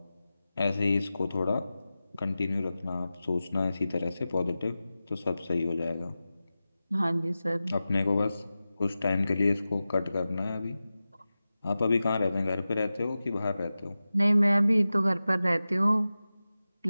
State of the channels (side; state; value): both; inverted; correlation -0.95